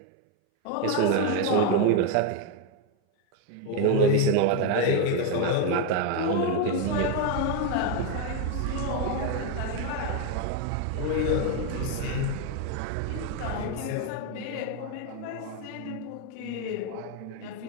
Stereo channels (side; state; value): both; different; correlation 0.02